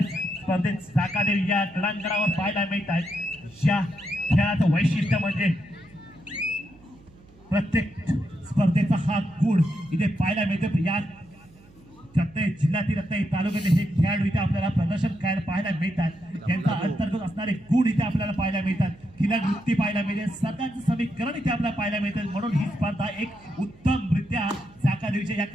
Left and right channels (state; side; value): noise; right; hum, 26 dB below the sound